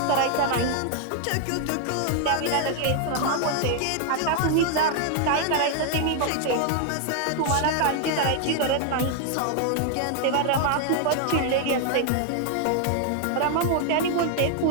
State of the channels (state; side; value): different; both; correlation 0.00